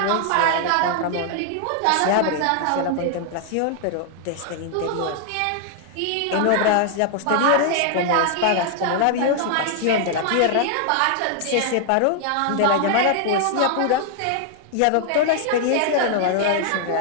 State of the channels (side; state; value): both; different; correlation 0.00